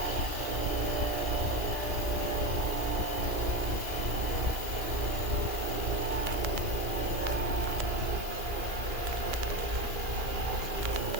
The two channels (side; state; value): left; late; 2.4 ms